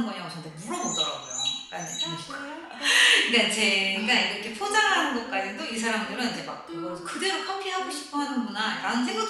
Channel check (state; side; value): identical; both; correlation 1.00